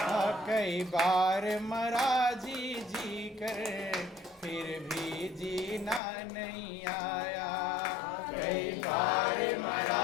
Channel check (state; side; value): drops out; right; at 6.0 s